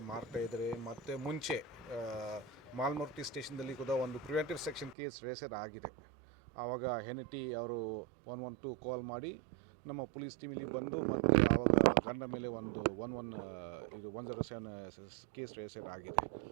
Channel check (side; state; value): left; drops out; at 5.0 s